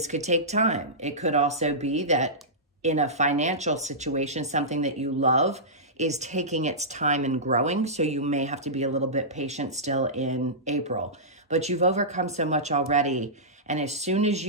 could take time. It could also be that in a financial situation, something that you love is taking its time and growing. So you may have to be a little bit patient still in April. But you've overcome so much already. And as soon as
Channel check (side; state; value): both; normal; correlation -0.16